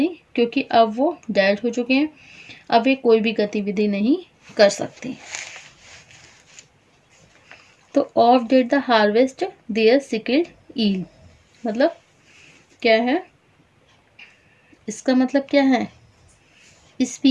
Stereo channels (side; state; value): both; identical; correlation 1.00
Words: क्योंकि अब वो डेड हो चुके हैं, अब वे कोई भी गतिविधि नहीं कर सकते। तो oft did the harvest their sickle yield, मतलब क्या है, इसका मतलब क्या है,